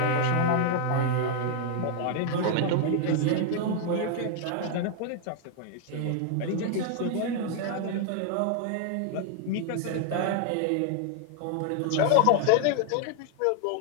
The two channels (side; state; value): both; different; correlation 0.00